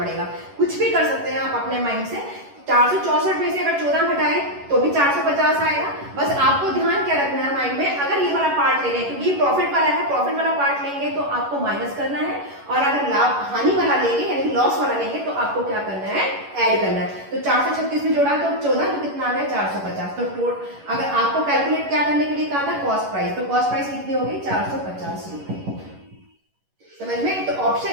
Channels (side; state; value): left; late; 11 ms